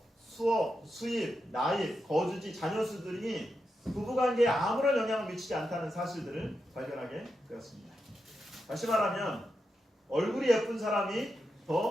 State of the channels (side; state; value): both; normal; correlation 0.87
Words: 수업, 수입, 나이, 거주지, 자녀 수들이 부부관계에 아무런 영향을 미치지 않다는 사실들을 발견하게 되었습니다. 다시 말하면 얼굴이 예쁜 사람이